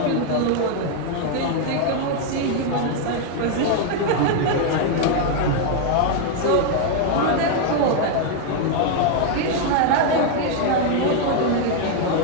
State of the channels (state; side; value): different; both; correlation 0.00